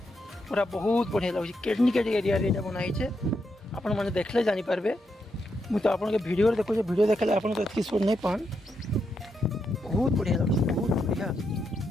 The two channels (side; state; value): both; normal; correlation 0.82